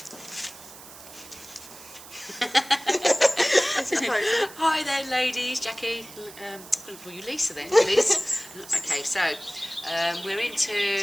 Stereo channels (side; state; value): right; noise; hiss, 17 dB below the sound